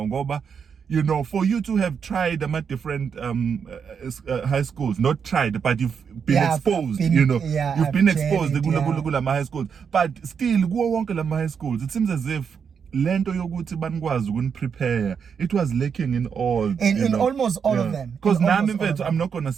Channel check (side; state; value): left; quieter; 6.7 dB